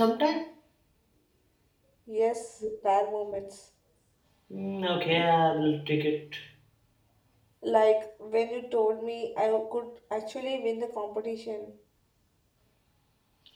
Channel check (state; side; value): identical; both; correlation 1.00